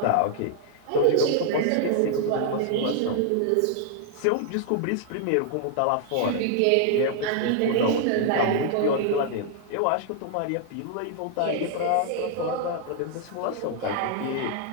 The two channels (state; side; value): different; both; correlation 0.00